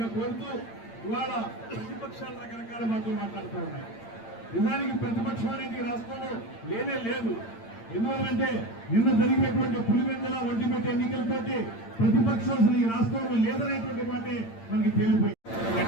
కోరుతూ ఇవాళ ప్రతిపక్షాలు రకరకాల మాటలు మాట్లాడుతూ ఉన్నాయి. నిజానికి ప్రతిపక్షం అనేది రాష్ట్రంలో లేనే లేదు. ఎందువల్లంటే నిన్న జరిగినటువంటి పులివెందుల ఒంటిమిట్ట ఎన్నికలతోటి ప్రతిపక్షం అసలు ఈ రాష్ట్రంలో లేదనేటువంటి మాటే మనకి తేలిపోయింది.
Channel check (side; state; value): right; late; 8.8 ms